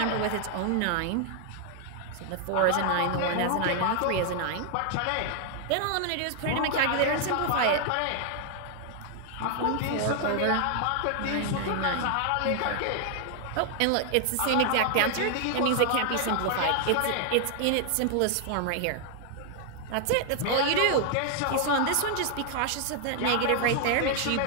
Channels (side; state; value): both; different; correlation 0.00